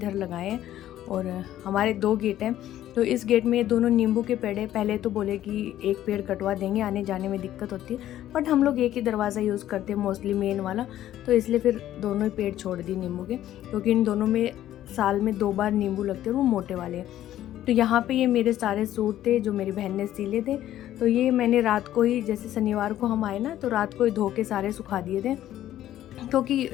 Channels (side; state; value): right; quieter; 12.7 dB